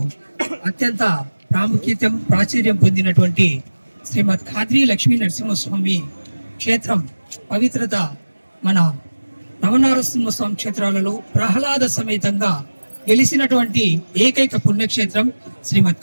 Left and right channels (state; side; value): inverted; both; correlation -1.00